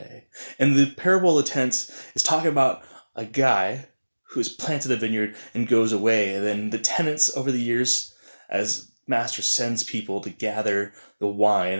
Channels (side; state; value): both; inverted; correlation -1.00